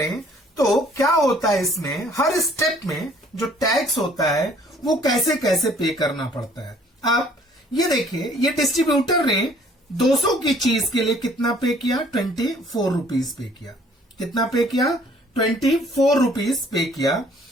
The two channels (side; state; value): both; normal; correlation 0.58